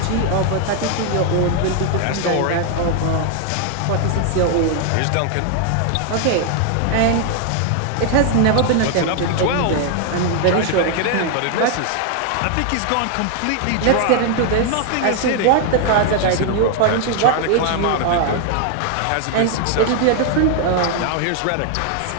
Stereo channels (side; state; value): both; different; correlation 0.00